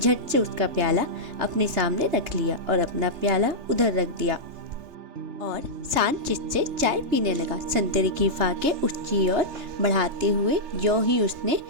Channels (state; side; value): late; left; 3.3 ms